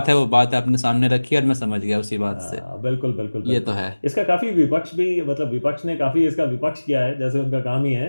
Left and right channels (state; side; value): inverted; both; correlation -1.00